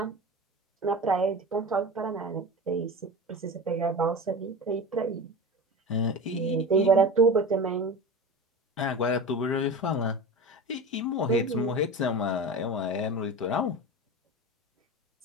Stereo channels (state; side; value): normal; both; correlation 0.29